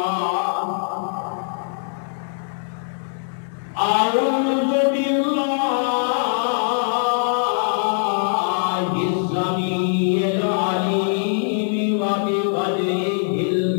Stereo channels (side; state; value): right; silent; 59 dB below the other